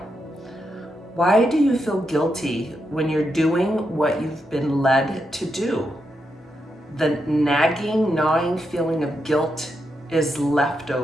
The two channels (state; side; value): normal; both; correlation 0.83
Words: Why do you feel guilty when you're doing what you've been led to do? The nagging, gnawing feeling of guilt is